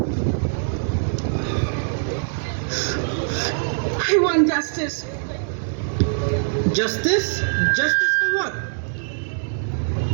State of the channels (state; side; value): silent; left; 64 dB below the other